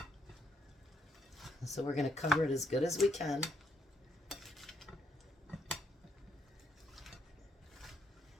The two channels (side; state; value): both; normal; correlation 0.73